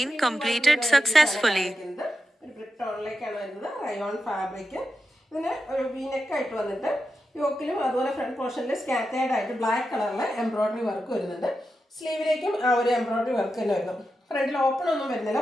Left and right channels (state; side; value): normal; both; correlation 0.89